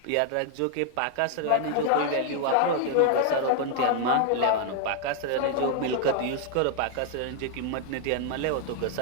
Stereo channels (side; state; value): both; different; correlation 0.00